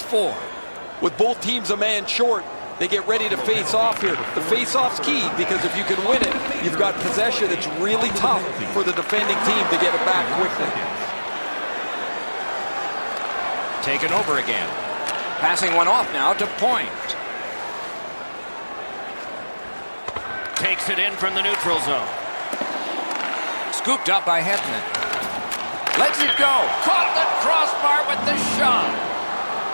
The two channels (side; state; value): both; inverted; correlation -1.00